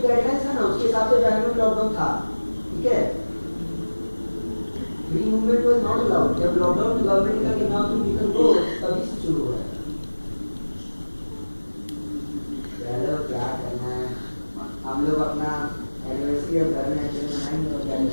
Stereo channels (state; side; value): inverted; both; correlation -1.00